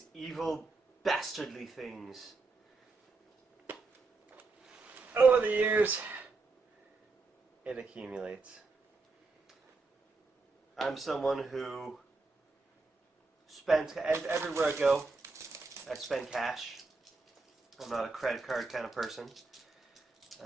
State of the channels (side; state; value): left; quieter; 3.8 dB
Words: evil, bastardly things. Over the years, it accumulates. I'm someone who spends, everywhere I go, I spend cash. I'm not a credit card kind of person.